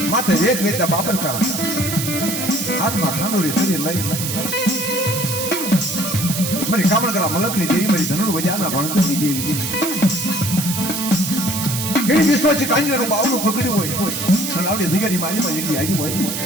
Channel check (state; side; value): noise; right; hiss, 4 dB below the sound